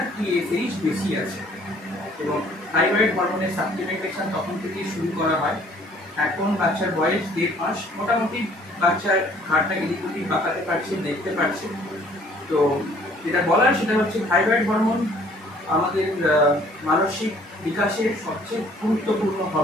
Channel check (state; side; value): normal; both; correlation 0.58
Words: টিএসএইচ বেশি আছে এবং থাইরয়েড হরমোনের সাপ্লিমেন্টেশন তখন থেকেই শুরু করা হয়। এখন বাচ্চার বয়স 1.5 মাস, মোটামুটি বাচ্চার ঘাড়টা এদিক ওদিক বাঁকাতে পারছে, দেখতে পারছে। তো যেটা বলার সেটা হচ্ছে থাইরয়েড হরমোন আমাদের মানসিক বিকাশের সবচেয়ে গুরুত্বপূর্ণ